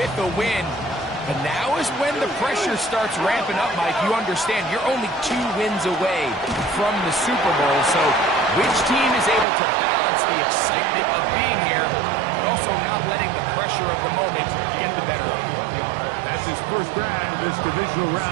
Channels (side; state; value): left; drops out; at 9.5 s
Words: a win. But now is when the pressure starts ramping up, Mike. You understand you're only 2 wins away from the Super Bowl. So which team is able to balance the excitement of being here, but also not letting the pressure of the moment get the better of you? That's his first grab of this divisional